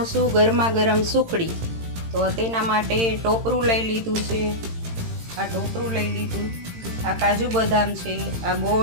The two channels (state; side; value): late; left; 18 ms